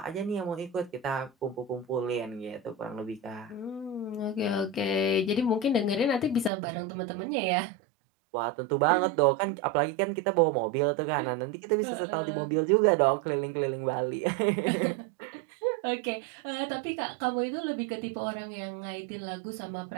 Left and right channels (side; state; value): left; drops out; at 6.5 s